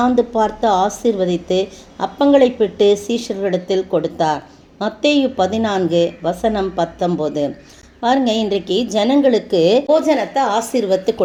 பார்த்து ஆசீர்வதித்து அப்பங்களை பிட்டு சீஷர்களிடத்தில் கொடுத்தார். மத்தேயு 14 வசனம் 19. பாருங்க, இன்றைக்கு ஜனங்களுக்கு போஜனத்தை ஆசீர்வத்து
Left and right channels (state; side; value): identical; both; correlation 1.00